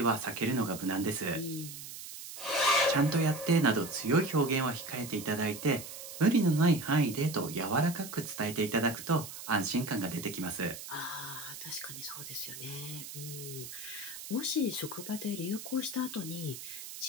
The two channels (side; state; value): right; noise; hiss, 11 dB below the sound